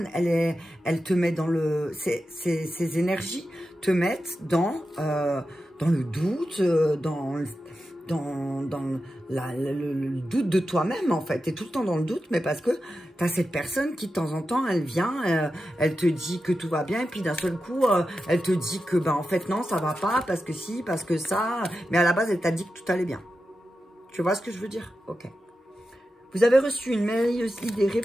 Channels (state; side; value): normal; both; correlation 0.91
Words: elle te met dans le... Ses énergies te mettent dans le doute, dans le doute de toi-même, en fait. Tu es tout le temps dans le doute, mais parce que tu as cette personne qui, de temps en temps, elle vient, elle te dit que tout va bien, et puis d'un seul coup, elle te dit que, en fait, non, ça va pas, parce que si, parce que ça, mais à la base, elle t'a dit que tout allait bien. Tu vois ce que je veux dire? Ok. Vous avez reçu une merveilleuse idée